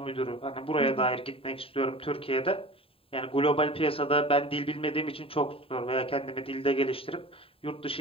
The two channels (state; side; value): late; right; 0.27 ms